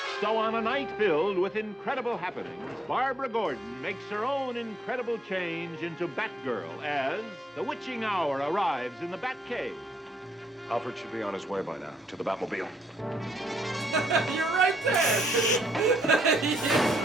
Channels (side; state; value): both; normal; correlation 0.73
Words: So on a night filled with incredible happenings, Barbara Gordon makes her own incredible change into Batgirl as the witching hour arrives in the Batcave. Alfred should be on his way by now, to the Batmobile. You're right there! You're